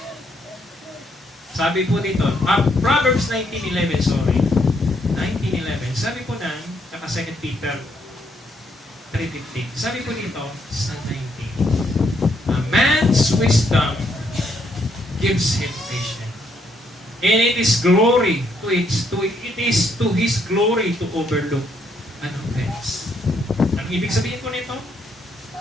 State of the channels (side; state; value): both; normal; correlation 0.73